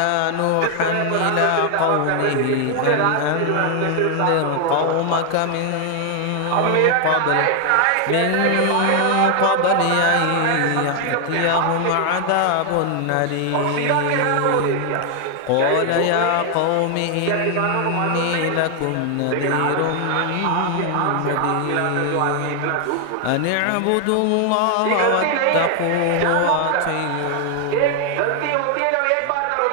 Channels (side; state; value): both; different; correlation 0.00